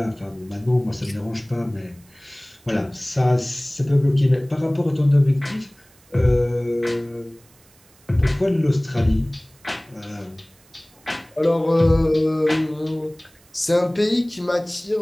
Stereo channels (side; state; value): right; noise; hiss, 29 dB below the sound